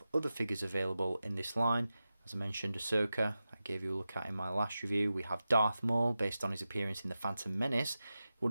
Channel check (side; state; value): both; inverted; correlation -0.93